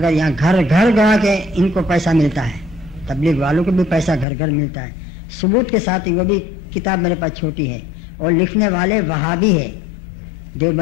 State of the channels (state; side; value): drops out; right; at 4.2 s